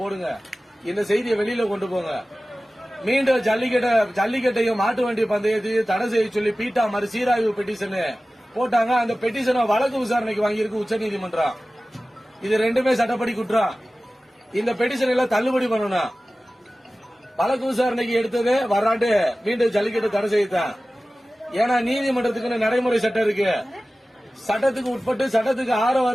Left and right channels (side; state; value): both; normal; correlation 0.96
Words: இந்த செய்தியை வெளியில கொண்டு போங்க. மீண்டும் ஜல்லிக்கட்டையும் மாட்டு வண்டி பந்தயத்தையும் தடை செய்ய சொல்லி பீட்டா மறு சீராய்வு பெட்டிஷன் போட்டாங்க. அந்த பெட்டிஷனை வழக்கு விசாரணைக்கு வாங்கியிருக்கு உச்சநீதிமன்றம். இது ரெண்டுமே சட்டப்படி குற்றம். இந்த பெட்டிஷன் எல்லாம் தள்ளுபடி பண்ணணும். வழக்கு விசாரணைக்கு எடுத்தது வராண்டு மீண்டும் ஜல்லிக்கட்டு தடை செய்யத்தான். ஏன்னா நீதிமன்றத்துக்கு நடைமுறை சட்டம் இருக்கு. சட்டத்துக்கு உட்பட்டு சட்டத்துக்கு ஆரவா